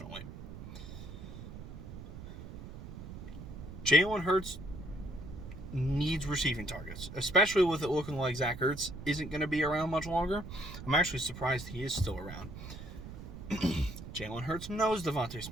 Jalen Hurts needs receiving targets, especially with it looking like Zach Ertz isn't going to be around much longer. I'm actually surprised he is still around. Jalen Hurts knows Devontae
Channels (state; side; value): noise; right; rumble, 11 dB below the sound